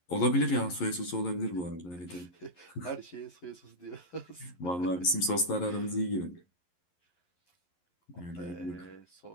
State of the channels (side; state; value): right; late; 11 ms